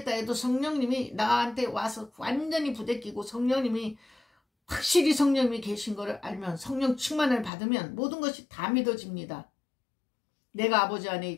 해도 성령님이 나한테 와서 완전히 부대끼고 성령님이 확실히 성령님이 계신 것을 알면, 성령 충만을 받으면 모든 것이 다 믿어집니다. 내가 아버지 안에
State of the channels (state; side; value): drops out; right; at 7.5 s